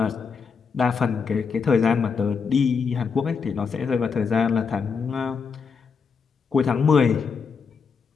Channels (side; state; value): right; quieter; 5.6 dB